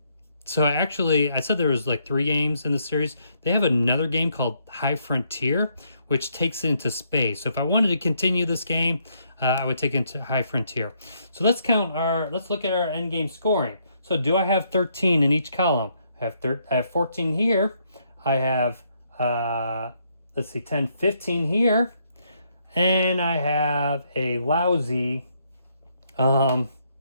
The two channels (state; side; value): inverted; both; correlation -0.73